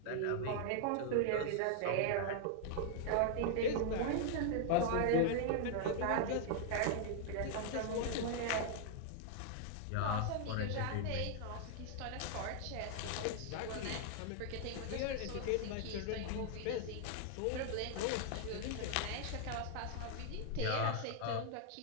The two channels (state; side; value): different; both; correlation 0.00